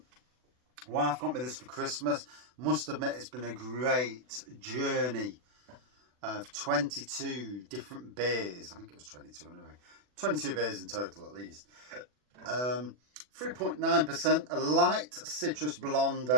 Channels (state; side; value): late; left; 40 ms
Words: got me this for Christmas. Must admit it's been a great journey of 22 different beers. I think it was 22 anyway. 22 beers in total at least. 3.9%, a light citrus blonde